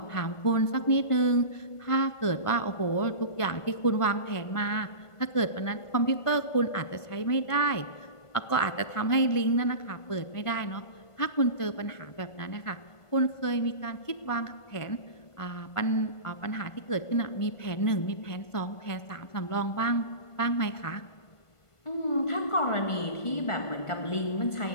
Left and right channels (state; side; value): late; right; 1.5 ms